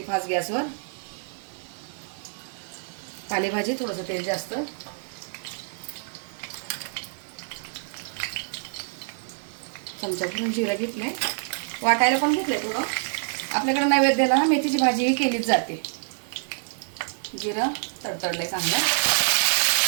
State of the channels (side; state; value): left; silent; digital silence